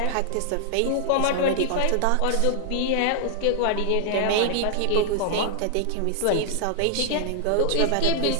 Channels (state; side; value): different; both; correlation -0.01